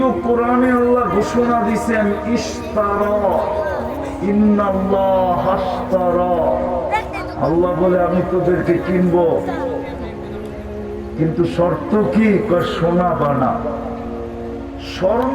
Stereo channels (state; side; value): identical; both; correlation 1.00